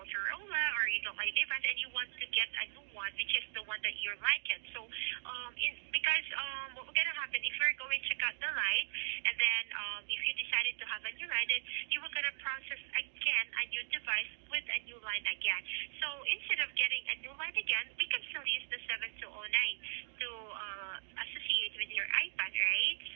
or you don't like the device and you want to get a new one, which is the one that you like it. So because what will gonna happen if you're going to cut the line and then if you decided to have a new line, then you were gonna process again a new device with a new line again. So instead of getting a new line again, we can still use the 7209 to associate with your iPad, right?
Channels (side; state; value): left; silent; digital silence